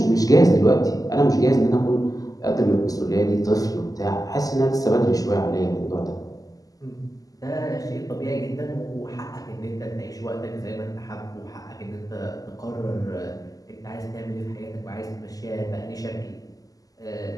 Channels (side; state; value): right; late; 0.17 ms